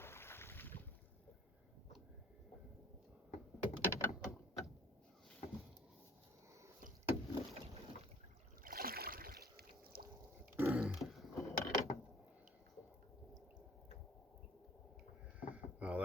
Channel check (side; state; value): both; normal; correlation 0.53